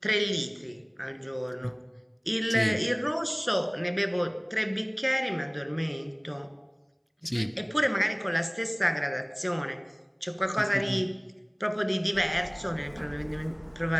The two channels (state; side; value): identical; both; correlation 1.00